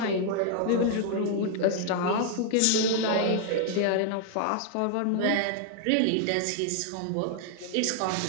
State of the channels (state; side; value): different; both; correlation 0.00